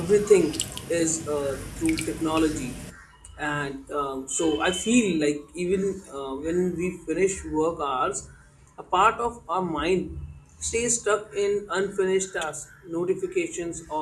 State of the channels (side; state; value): both; identical; correlation 1.00